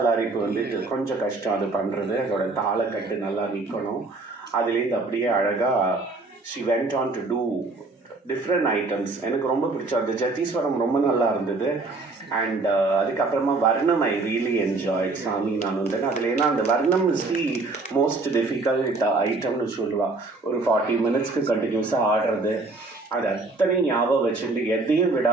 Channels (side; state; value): left; quieter; 3.5 dB